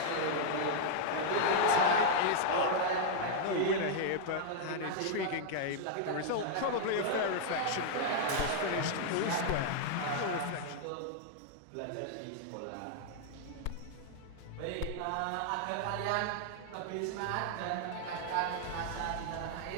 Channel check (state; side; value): different; both; correlation -0.01